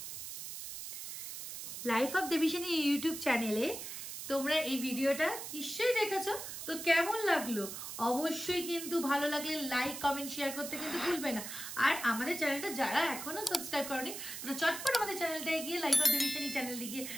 লাইফ অফ দেবীসেনী ইউটিউব চ্যানেলে তোমরা এই ভিডিওটা নিশ্চয়ই দেখেছো, তো কেমন লাগলো অবশ্যই কিন্তু ভালো লাগলে লাইক কমেন্ট শেয়ার করতে কিন্তু ভুলবে না। আর আমাদের চ্যানেলটা যারা এখনো সাবস্ক্রাইব করনি তারা চটপট আমাদের চ্যানেলটায় গিয়ে লাইফ অফ দেবীসেনী চ্যানেলে গিয়ে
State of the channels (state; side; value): noise; right; hiss, 8 dB below the sound